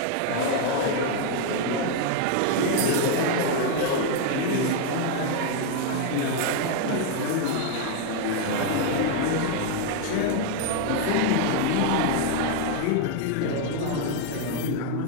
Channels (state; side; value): different; both; correlation 0.01